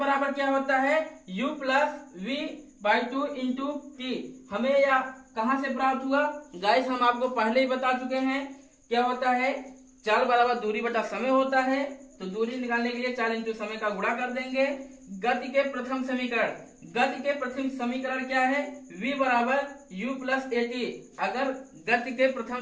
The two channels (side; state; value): both; identical; correlation 1.00